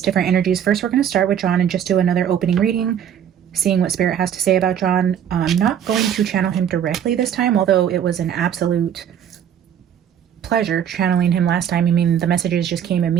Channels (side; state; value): left; quieter; 9.1 dB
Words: different energies. First, we're going to start with John and just do another opening reading, seeing what Spirit has to say about John. I'm not going to channel him directly this time, although it was an absolute pleasure channeling him last time. I mean, the messages just came